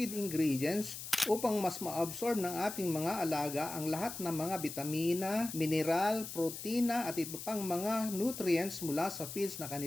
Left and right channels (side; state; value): left; noise; hiss, 9 dB below the sound